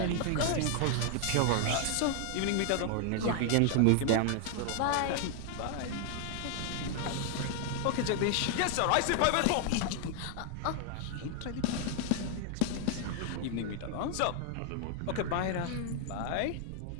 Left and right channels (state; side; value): different; both; correlation 0.00